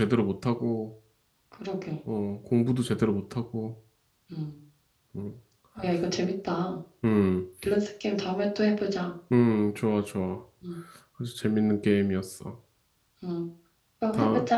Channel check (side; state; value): both; identical; correlation 1.00